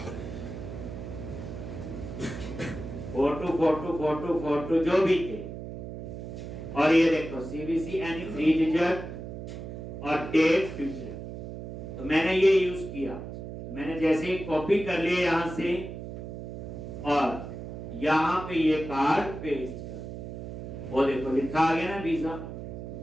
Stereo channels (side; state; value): right; noise; hum, 9 dB below the sound